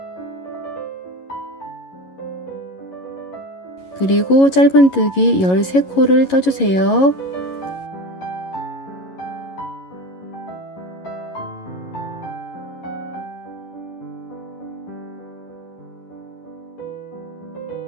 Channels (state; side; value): late; right; 11 ms